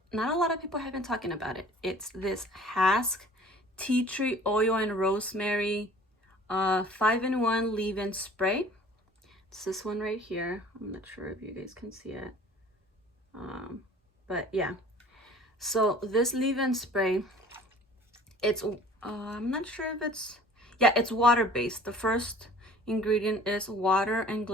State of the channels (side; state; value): both; normal; correlation 0.48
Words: not a lot of people have been talking about it, it's this Hask tea tree oil and rosemary 5-in-1 leave-in spray. It's this one right here. I'm not sure if you guys can see it, but yeah. So this leave-in spray, it's I'm not sure if it's, yeah, it's water-based. The first ingredient is water and